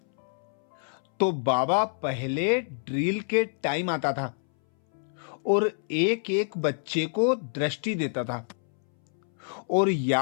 तो बाबा पहले ड्रिल के टाइम आता था और एक एक बच्चे को दृष्टि देता था और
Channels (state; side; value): silent; right; 60 dB below the other